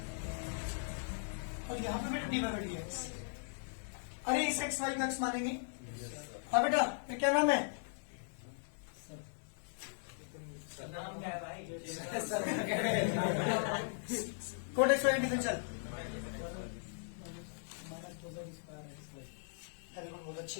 और यहाँ पे बेटा d by dx। अरे इस एक्स वाई को एक्स मानेंगे। हाँ बेटा ये क्या नाम है? नाम क्या है भाई? कोट एक्स वाई डिफरेंशियल बहुत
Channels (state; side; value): silent; right; digital silence